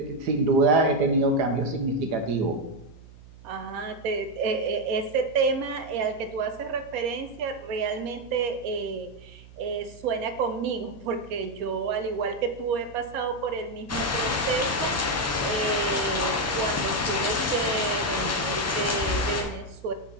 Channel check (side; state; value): right; noise; hum, 20 dB below the sound